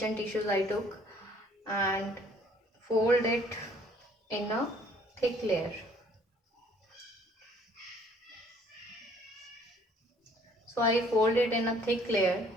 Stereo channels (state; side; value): normal; both; correlation 0.59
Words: tissues I took, and fold it in a thick layer. So I fold it in a thick layer,